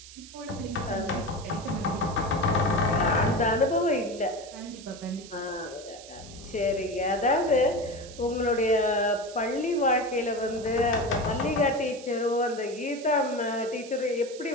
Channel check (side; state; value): right; noise; hiss, 17 dB below the sound